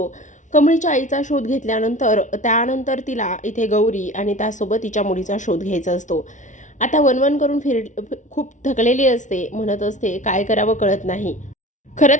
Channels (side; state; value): right; late; 0.36 ms